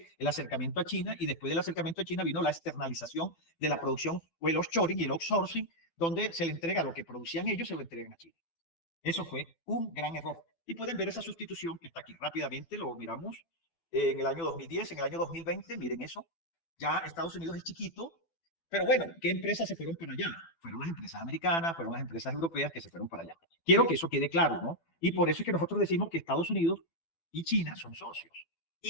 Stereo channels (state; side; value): late; right; 12 ms